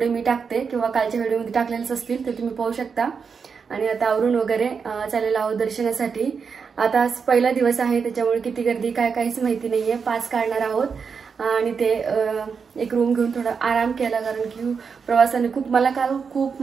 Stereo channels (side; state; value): left; quieter; 5.8 dB